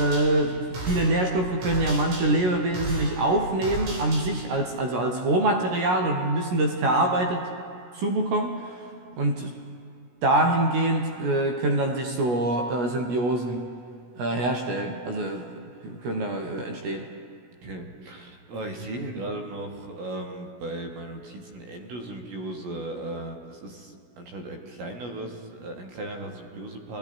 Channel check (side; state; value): left; late; 16 ms